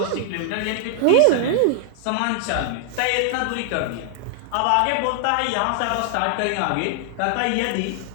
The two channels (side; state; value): both; different; correlation 0.00